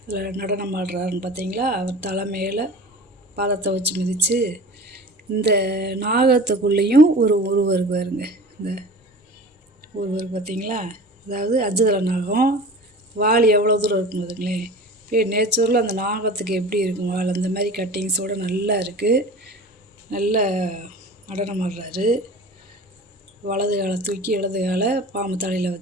அதில் நடனம் ஆடுறாருன்னு பார்த்தீங்களா? அவர் தலைமையில் பாதத்தை வச்சு மிதித்து இந்த நாகத்துக்குள்ளேயும் ஒரு உருவருக்கு பாருங்க. இந்த உருவருக்கு பார்த்தீங்களா? அதாவது அஜுதல நாகம் வால் எவ்வளோ தூரம் இருக்கும் பாருங்களேன். இப்போ நேச்சுரலில் அந்த நாகத்துக்கு எப்படி இருக்கும் வால், அந்த மாதிரி கட்டிங்ஸோடு நல்லா இருக்குது. நல்ல நடனம் ஆடுறாரு. வலது காலை தூக்கி இடது காலை பாம்பு தலையில்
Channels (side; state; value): both; normal; correlation 0.38